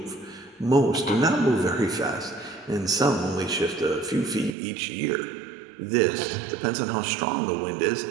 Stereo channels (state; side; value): drops out; left; at 4.5 s